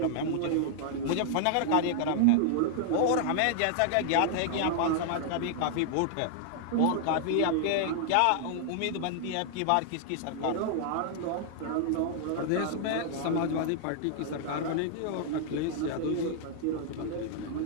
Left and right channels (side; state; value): both; different; correlation -0.01